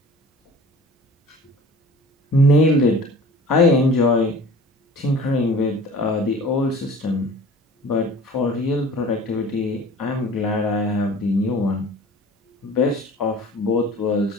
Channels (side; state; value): both; normal; correlation 0.44